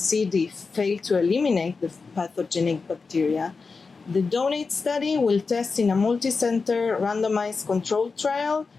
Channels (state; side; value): quieter; right; 4.5 dB